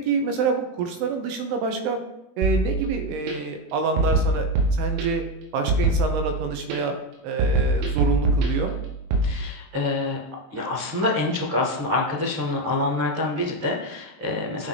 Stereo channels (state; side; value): late; left; 19 ms